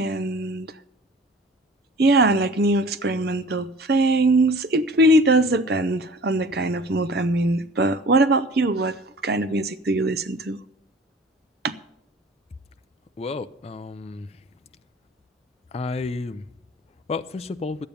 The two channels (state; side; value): normal; both; correlation 0.46